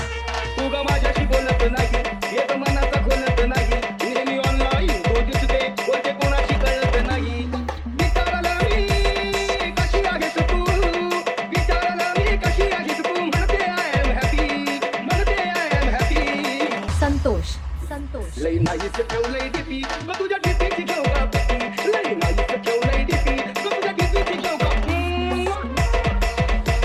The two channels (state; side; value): identical; both; correlation 1.00